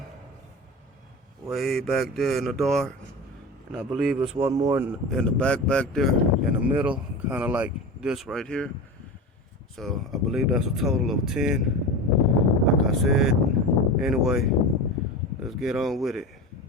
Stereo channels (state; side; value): normal; both; correlation 0.28